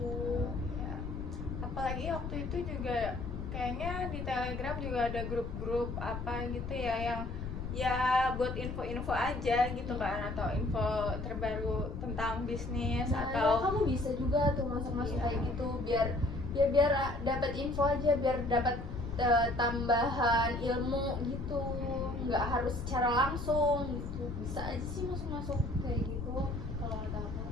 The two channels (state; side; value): noise; left; rumble, 6 dB below the sound